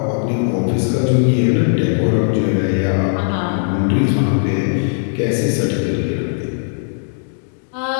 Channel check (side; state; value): right; silent; digital silence